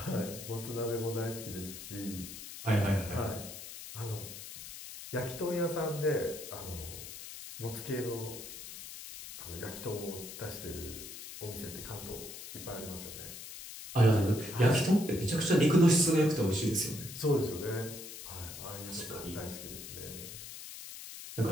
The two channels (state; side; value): noise; left; hiss, 11 dB below the sound